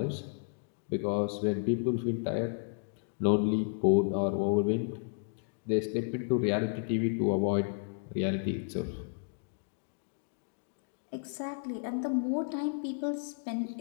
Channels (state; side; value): silent; right; digital silence